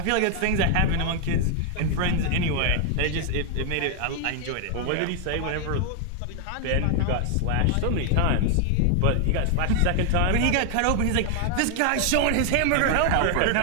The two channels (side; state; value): both; different; correlation 0.00